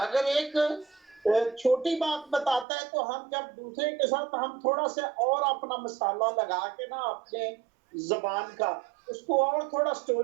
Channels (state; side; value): drops out; left; at 2.7 s